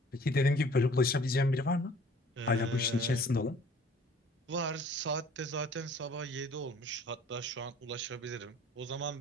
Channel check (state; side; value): normal; both; correlation 0.52